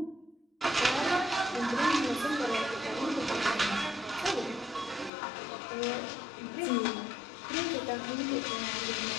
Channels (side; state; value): right; drops out; at 5.1 s